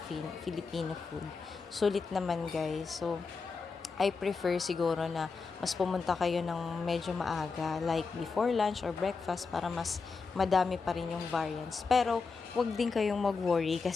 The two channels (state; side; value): quieter; right; 4.7 dB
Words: food. Sulit naman, guys. So, I prefer siguro na mas pumunta kayo ng medyo maaga, like before lunch or breakfast, para mas madami pa rin yung variants. Pero, wag din kayong mag-worry